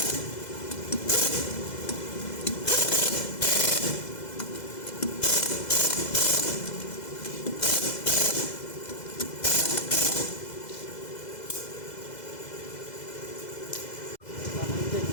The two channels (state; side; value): late; right; 2.0 ms